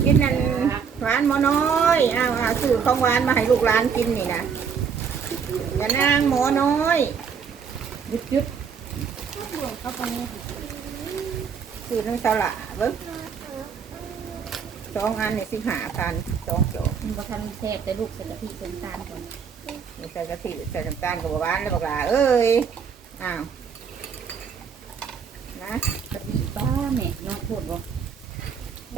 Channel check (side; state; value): left; quieter; 6.6 dB